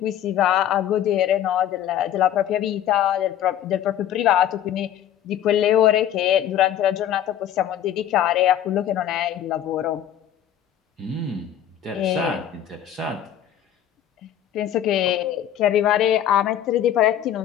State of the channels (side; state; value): right; quieter; 10.7 dB